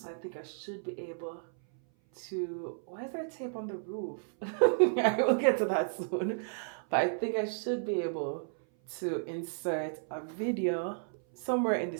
I think I should be able to... Why is there tape on the roof? I will get to that soon. But I think I should be able to insert a video somewhere in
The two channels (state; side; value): silent; left; 56 dB below the other